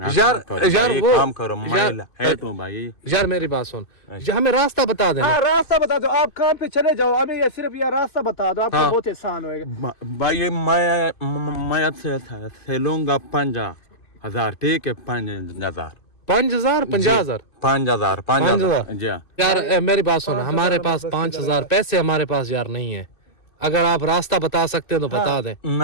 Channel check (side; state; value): right; late; 2.5 ms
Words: यार वो काम करो, मैं हेल्प हूँ भाई। यार मेरी बात सुन, हमें रास्ता बता देना। हाँ रास्ता बता दो, आप काम पे चले जाओ, हमें ये सिर्फ ये रास्ता बता दो, आपको बहुत आसान होएगा। भाई मैं से लूंगा 5,000, ठीक है। 5,000 50,000 जी। यार मेरी बात सुन, हमारे पास 5,000 पैसे हमारे पास यार नहीं है। अगर आप रास्ता बता सकते हो तो बता दें।